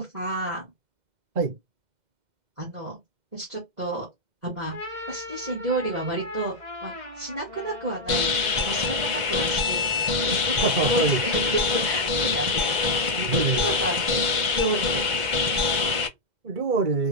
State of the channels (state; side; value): late; left; 2.1 ms